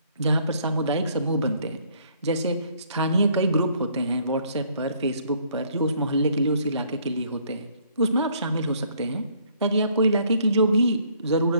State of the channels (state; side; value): inverted; both; correlation -0.64